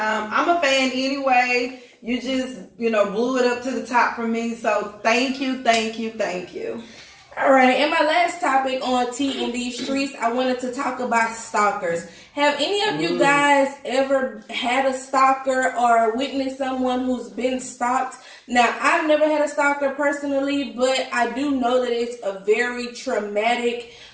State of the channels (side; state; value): both; identical; correlation 1.00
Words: a fan anyway. You just, blew it up to the top for me. So thank you. All right, and my last topic on T in these streets, I wanted to talk about stalkers. Have any of you guys ever had a stalker or witnessed someone who's been stalked? Now, I've never had a stalker personally, but I do know that it's a very traumatic